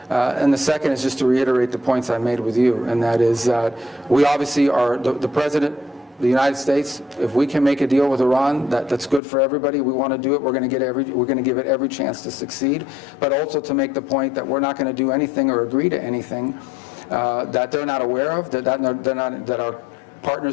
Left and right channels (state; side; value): drops out; right; at 9.2 s